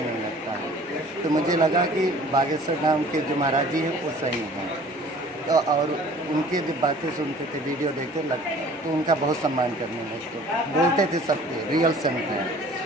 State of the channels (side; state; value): both; normal; correlation 0.49